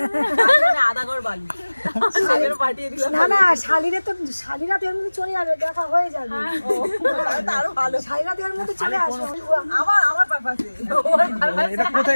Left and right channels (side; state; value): both; inverted; correlation -1.00